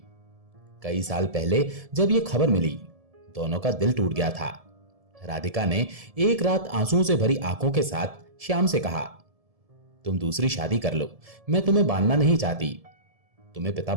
कई साल पहले जब ये खबर मिली, दोनों का दिल टूट गया था। राधिका ने एक रात आंसुओं से भरी आंखों के साथ श्याम से कहा, तुम दूसरी शादी कर लो, मैं तुम्हें बांधना नहीं चाहती, तुम्हें पिता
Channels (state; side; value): late; left; 1.7 ms